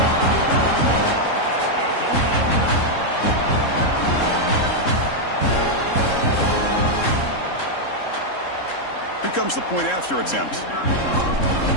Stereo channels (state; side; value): late; right; 3.7 ms